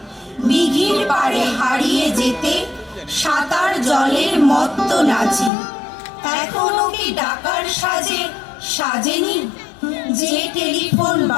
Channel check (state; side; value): drops out; right; at 5.5 s